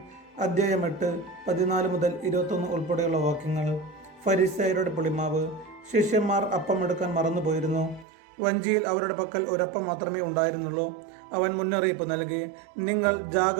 അധ്യായം 8 14 മുതൽ 21 ഉൾപ്പെടെയുള്ള വാക്യങ്ങൾ. ഫരിസേയരുടെ പുളിമാവ്. ശിഷ്യന്മാർ അപ്പം എടുക്കാൻ മറന്നുപോയിരുന്നു. വഞ്ചിയിൽ അവരുടെ പക്കൽ ഒരപ്പം മാത്രമേ ഉണ്ടായിരുന്നുള്ളൂ. അവൻ മുന്നറിയിപ്പ് നൽകി, നിങ്ങൾ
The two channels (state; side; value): drops out; left; at 8.1 s